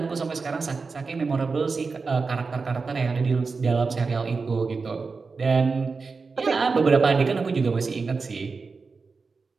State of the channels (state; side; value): quieter; left; 4.5 dB